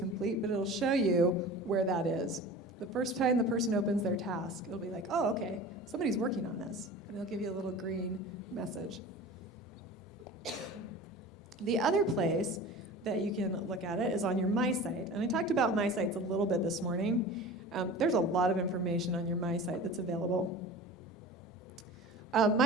but it'll show you where that is. The first time the person opens their task, it'll be like, oh, okay, somebody's working on this. And it'll give you a little green message. The other place that you can look at it is on your My Site. And I talked about My Sites a little bit this morning. There's a lot of information on your My Site that's available.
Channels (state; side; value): normal; both; correlation 0.36